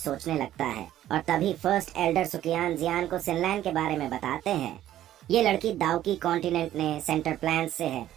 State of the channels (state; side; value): quieter; left; 12.6 dB